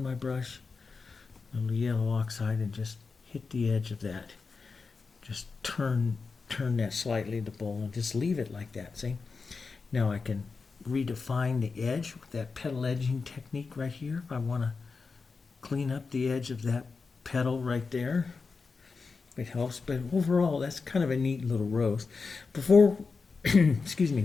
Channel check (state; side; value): quieter; right; 4.6 dB